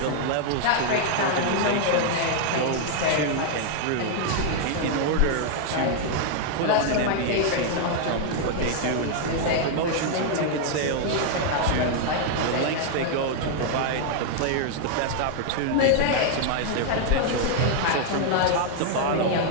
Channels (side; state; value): both; different; correlation 0.00